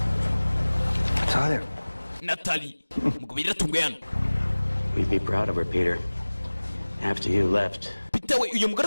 Natalie. We'd be proud of her, Peter. After you left. Peter we uyu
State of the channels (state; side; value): inverted; both; correlation -1.00